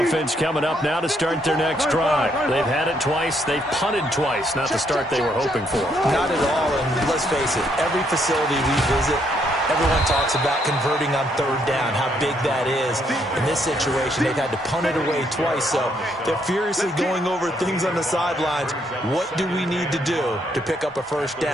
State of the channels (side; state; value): both; normal; correlation 0.72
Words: coming up now to start their next drive. They've had it twice. They've punted twice. Not the start they were hoping for. Not at all, and let's face it, every facility we visit, everyone talks about converting on third down, how big that is. In this situation, they've had to punt it away twice, so they're furiously going over things on the sidelines. What do we need to do to pick up a first